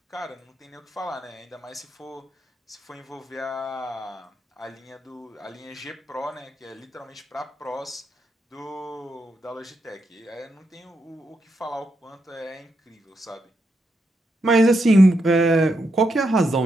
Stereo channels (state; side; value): normal; both; correlation 0.82